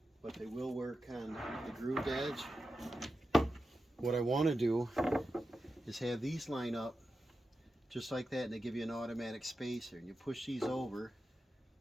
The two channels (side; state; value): both; normal; correlation 0.90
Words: but they will work on the grooved edge. What I want to do is have these line up just like that, and they give you an automatic spacer, and you push these over.